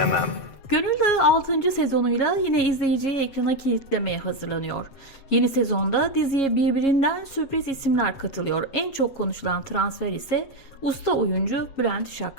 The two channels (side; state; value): right; late; 7.7 ms